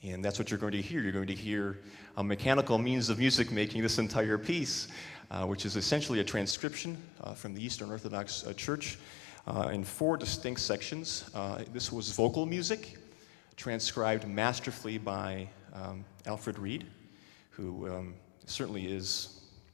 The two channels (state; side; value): drops out; right; at 6.6 s